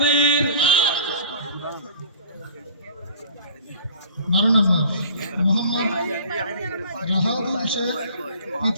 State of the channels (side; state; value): both; inverted; correlation -0.46